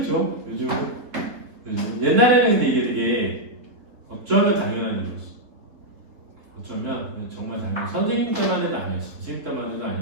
요즘 옛날에는 근데 이게 되게 어쩌면 당연한 일이었어. 어쩌면 정말 당연한 선생님 때만 해도 아니었어. 선생님 때만 해도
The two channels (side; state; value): left; late; 3.9 ms